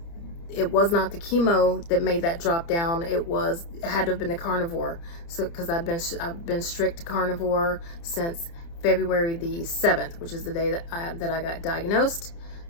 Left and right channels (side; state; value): right; late; 30 ms